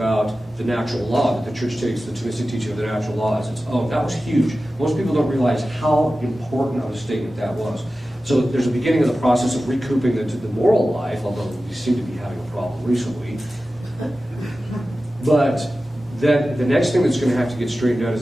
the natural law, that the church takes the Thomistic teaching of the natural law as its own. That was huge. Most people don't realize how important of a statement that was. So there's a beginning of the process of recouping the moral life, although we seem to be having a problem recently. But then the next thing that's going to have to get straightened out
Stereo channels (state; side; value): normal; both; correlation 0.95